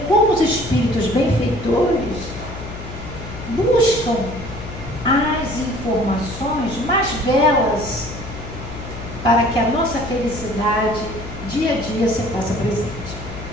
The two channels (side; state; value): left; noise; hum, 11 dB below the sound